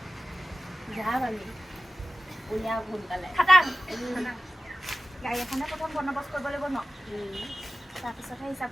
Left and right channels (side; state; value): both; normal; correlation 0.94